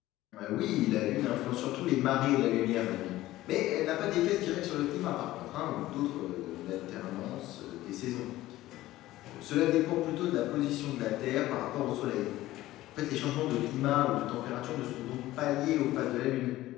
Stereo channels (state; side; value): quieter; right; 16.1 dB